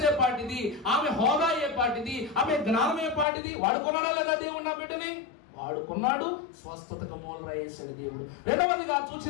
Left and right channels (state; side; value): drops out; right; at 3.2 s